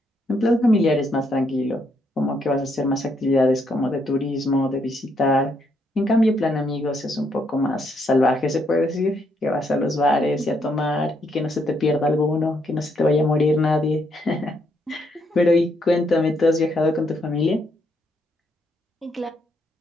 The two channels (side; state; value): both; normal; correlation 0.74